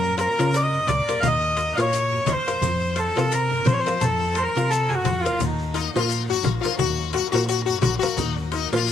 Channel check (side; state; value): both; normal; correlation 0.80